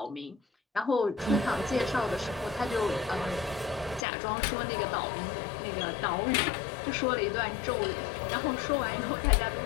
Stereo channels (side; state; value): right; drops out; at 4.0 s